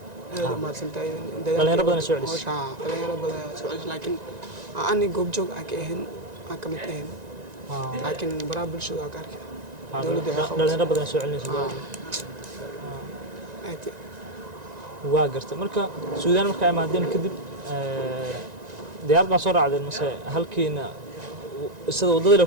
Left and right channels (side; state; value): left; late; 1.9 ms